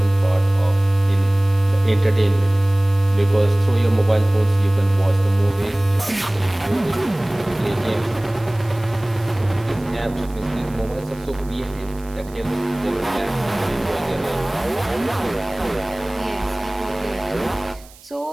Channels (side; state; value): right; noise; hiss, 24 dB below the sound